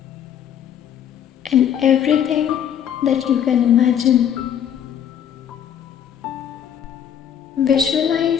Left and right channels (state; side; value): quieter; right; 9.2 dB